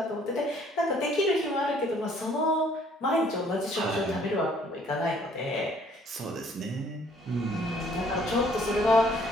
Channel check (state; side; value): normal; both; correlation 0.61